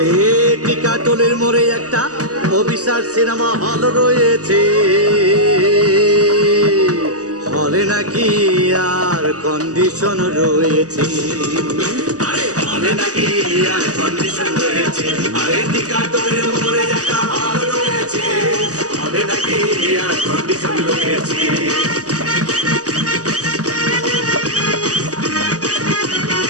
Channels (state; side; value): late; left; 0.67 ms